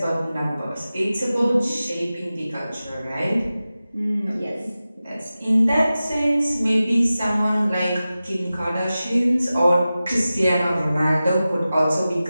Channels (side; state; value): both; inverted; correlation -0.95